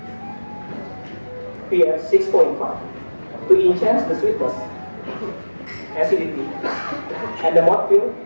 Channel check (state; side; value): inverted; both; correlation -1.00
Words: pH 6.5 to enhance the sweetness, acidity, and the mouthfeel